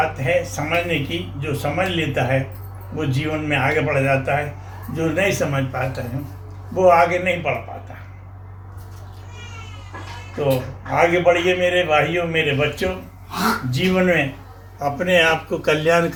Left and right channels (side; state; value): both; identical; correlation 1.00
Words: है समझने की। जो समझ लेता है वो जीवन में आगे बढ़ जाता है, जो नहीं समझ पाता है वो आगे नहीं बढ़ पाता। तो आगे बढ़िए मेरे भाइयों, मेरे बच्चों, जीवन में अपने आप को कल्याण